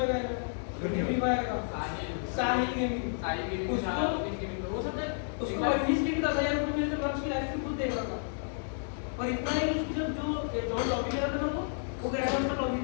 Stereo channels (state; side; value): silent; right; digital silence